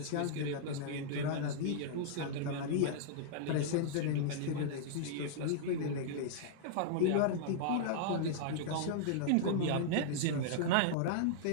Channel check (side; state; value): both; different; correlation -0.01